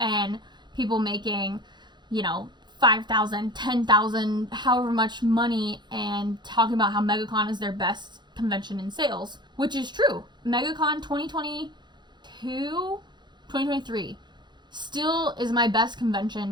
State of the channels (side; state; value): left; late; 0.21 ms